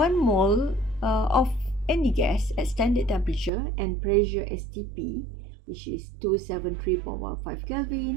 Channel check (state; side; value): drops out; left; at 3.5 s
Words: mole of any gas at standard temperature and pressure STP, which is 273.15